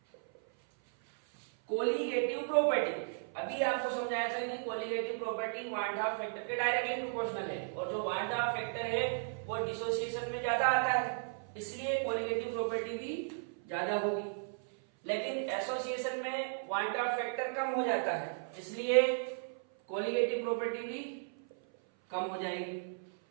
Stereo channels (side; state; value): left; silent; 54 dB below the other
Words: कोलिगेटिव प्रॉपर्टी, अभी आपको समझाया था कि colligative property want Hoff factor के डायरेक्टली प्रोपोर्शनल है, और जो वांट हाफ फैक्टर है वो डिसोसिएशन में ज्यादा आता है, इसलिए कोलिगेटिव प्रॉपर्टी भी ज्यादा होगी। लेकिन एसोसिएशन में वांट हाफ फैक्टर कम हो जाता है, इसलिए कोलिगेटिव प्रॉपर्टी भी कम हो जाएगी।